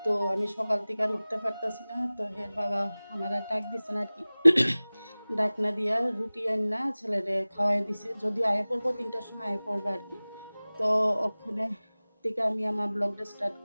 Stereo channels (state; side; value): inverted; both; correlation -0.99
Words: তো আমি সকাল থেকে আর উঠতে পারতেছি না। তো হের বাবা আমার আর ডাক দিচ্ছে না আর কি। ডাক না দিয়া রুটি আন না ছেলেরে খাওয়াই দিছে, যদিও আয়া পড়বো 3টার সময় আয়া পড়বো আর কি। তো ওখানে থেকে আমি আমার ব্লগটা স্টার্ট